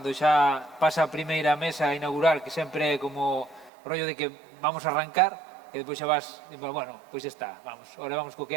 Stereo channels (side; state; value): left; drops out; at 3.7 s